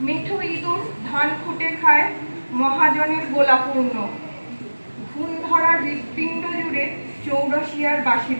মেঠো ইঁদুর ধান খুঁটে খায়, মহাজনের গোলাপূর্ণ। ঘুম ধরা হৃৎপিণ্ড জুড়ে চৌরসিয়ার বাঁশি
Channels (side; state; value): both; inverted; correlation -1.00